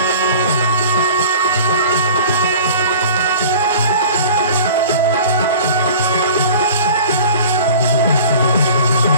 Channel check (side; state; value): both; inverted; correlation -0.42